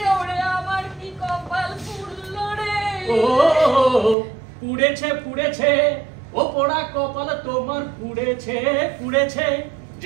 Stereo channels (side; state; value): left; drops out; at 4.2 s